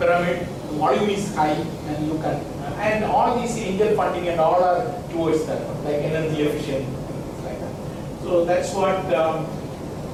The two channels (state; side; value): identical; both; correlation 1.00